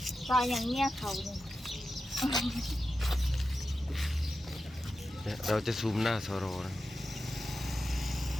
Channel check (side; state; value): both; normal; correlation 0.91